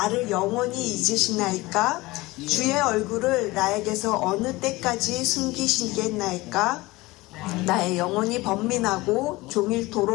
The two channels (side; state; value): right; quieter; 20.7 dB